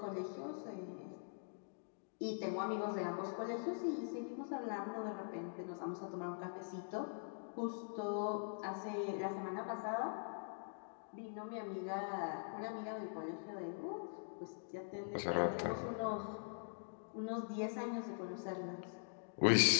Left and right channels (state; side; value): silent; right; digital silence